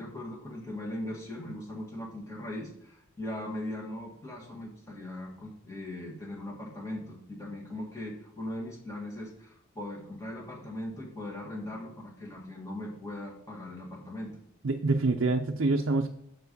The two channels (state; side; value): normal; both; correlation 0.63